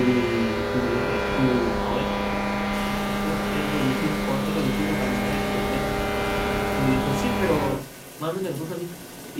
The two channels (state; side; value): identical; both; correlation 1.00